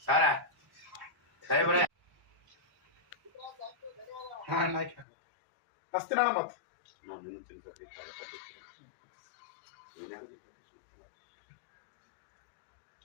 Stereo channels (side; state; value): right; drops out; at 5.1 s